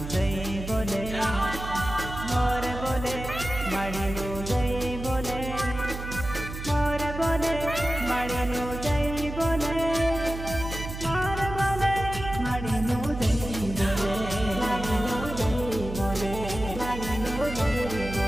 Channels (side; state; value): right; noise; hum, 8 dB below the sound